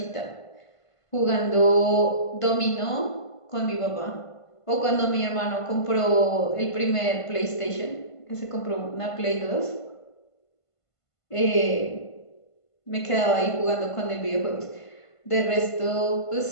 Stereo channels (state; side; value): late; right; 1.5 ms